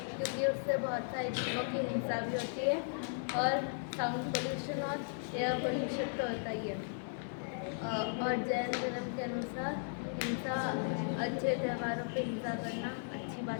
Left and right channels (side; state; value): right; silent; digital silence